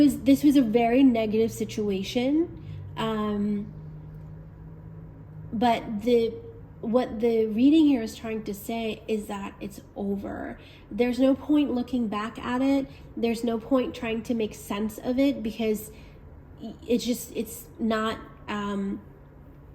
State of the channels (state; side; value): identical; both; correlation 1.00